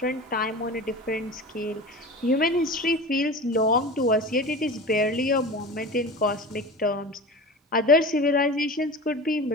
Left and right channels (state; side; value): normal; both; correlation 0.33